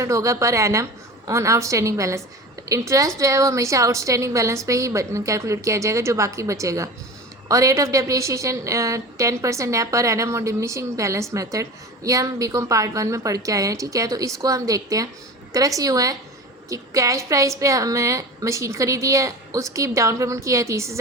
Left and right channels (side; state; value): both; normal; correlation 0.34